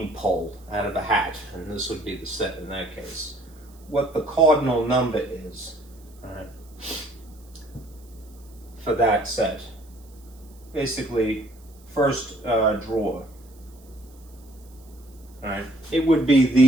pull out of a hat, and this would be the set in that case, what the cardinal number is, right, for that set. Basically, first drawer. Right? It would be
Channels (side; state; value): right; noise; hiss, 28 dB below the sound